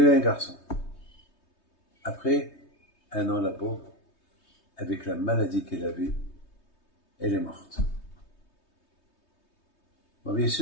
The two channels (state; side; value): late; right; 3.2 ms